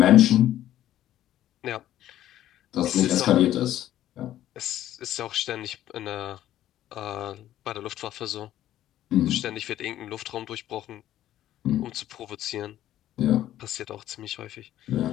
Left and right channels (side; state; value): right; quieter; 12.8 dB